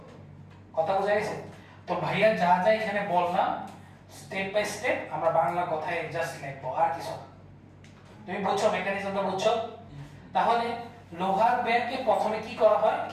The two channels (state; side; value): identical; both; correlation 1.00